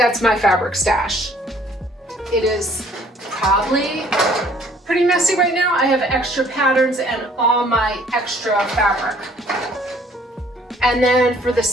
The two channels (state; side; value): normal; both; correlation 0.59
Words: my fabric stash. It is probably pretty messy right now. I have extra patterns and all my extra fabric. And then for the